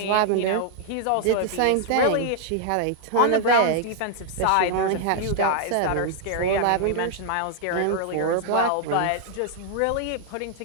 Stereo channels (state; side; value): different; both; correlation 0.00